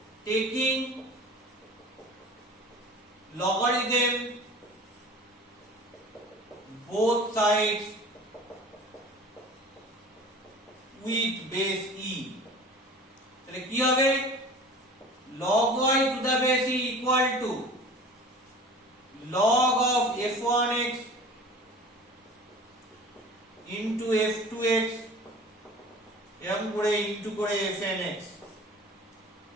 taking logarithm both sides with base e তাহলে কি হবে log y to the base e equal to log of f1x into f2x এরকম করে into করে fnx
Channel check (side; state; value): both; normal; correlation 0.41